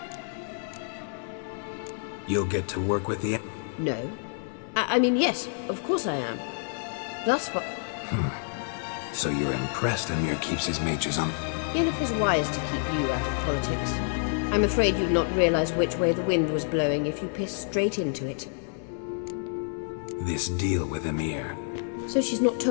You'll get to work with the... No. I mean, yes, of course I am. Thus far... So you're impressed Emir keeps his mages on... Yennefer's wise to keep you out of politics. I'm afraid you'd not realize which way the wind was blowing if you pissed straight into it. This deal with Emir. So she's not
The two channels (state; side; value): silent; right; 59 dB below the other